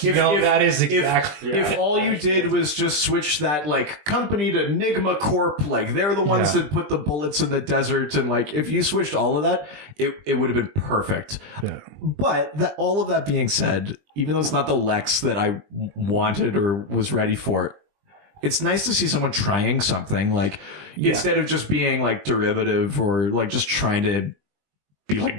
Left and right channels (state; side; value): late; left; 20 ms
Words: That is exactly. If all you did was just switch that like company to Enigma Corp, like they're the ones that put the bullets in the desert, and like if you switched all of that, it would have been perfect. Yeah. But all of that being said, even though it's not the Lex that I wanted or was ready for, it's nice to see someone trying something, like, instead of just being, like, derivative or, like, just trying to be